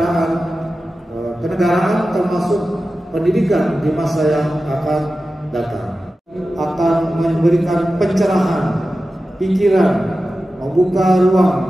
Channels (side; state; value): both; normal; correlation 0.94